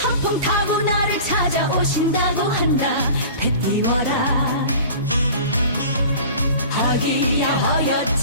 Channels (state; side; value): inverted; both; correlation -0.40